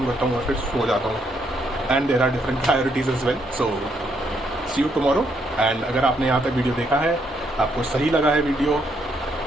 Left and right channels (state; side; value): normal; both; correlation 0.75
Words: करता हूँ और फिर सो जाता हूँ। And there are different priorities as well, so see you tomorrow. And अगर आपने यहाँ तक वीडियो देखा है, आपको सही लगा है वीडियो,